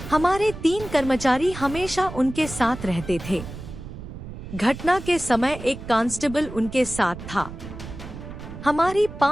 हमारे 3 कर्मचारी हमेशा उनके साथ रहते थे। घटना के समय एक कांस्टेबल उनके साथ था। हमारी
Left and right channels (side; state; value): right; noise; rumble, 11 dB below the sound